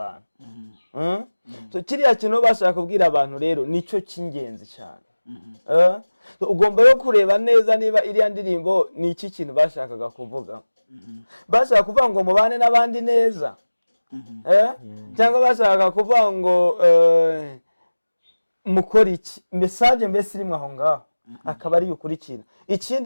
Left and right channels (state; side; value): inverted; both; correlation -1.00